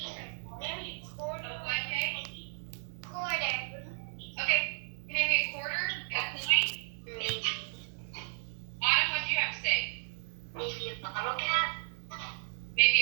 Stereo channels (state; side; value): silent; left; digital silence